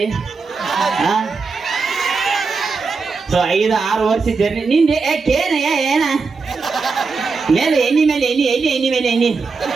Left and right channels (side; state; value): left; quieter; 4.6 dB